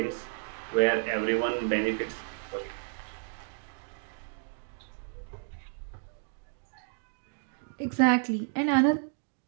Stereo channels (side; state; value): left; silent; digital silence